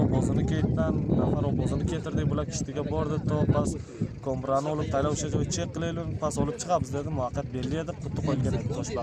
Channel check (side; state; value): both; identical; correlation 1.00